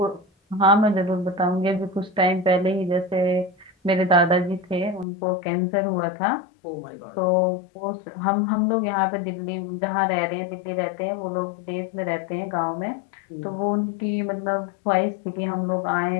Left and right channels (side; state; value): right; drops out; at 5.1 s